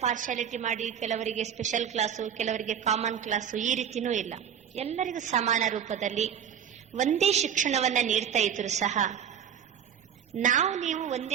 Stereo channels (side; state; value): left; quieter; 8.5 dB